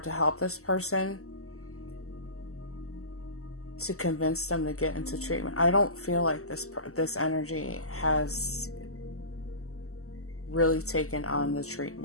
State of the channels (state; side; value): late; right; 0.63 ms